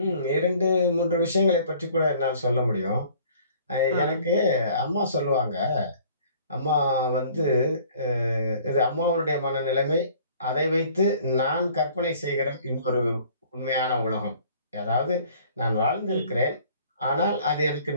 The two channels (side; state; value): both; inverted; correlation -0.54